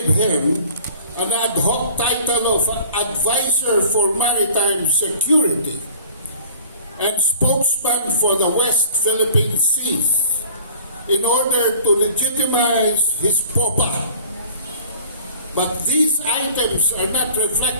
him an ad hoc title of Advisor for Maritime Security and spokesman for the West Philippine Seas in order to legitimize his POPA. But these items are not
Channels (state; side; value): inverted; both; correlation -0.46